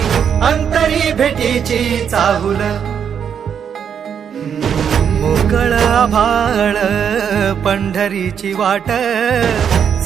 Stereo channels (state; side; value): quieter; left; 7.8 dB